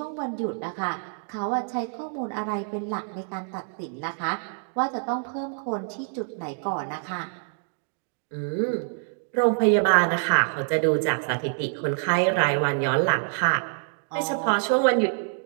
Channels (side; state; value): left; silent; 61 dB below the other